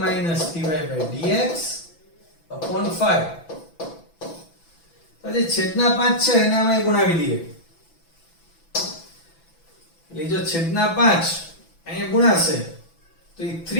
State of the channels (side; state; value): right; late; 6.0 ms